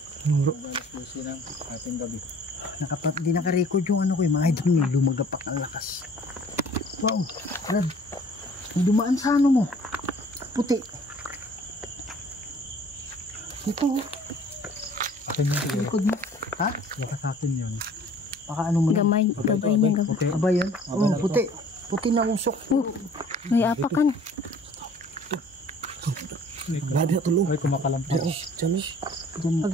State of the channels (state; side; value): normal; both; correlation 0.52